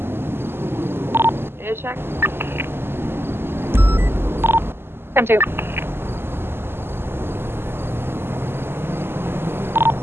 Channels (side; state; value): left; late; 0.11 ms